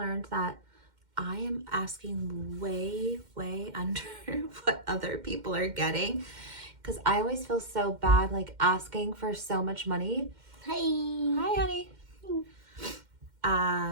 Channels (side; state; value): left; late; 2.1 ms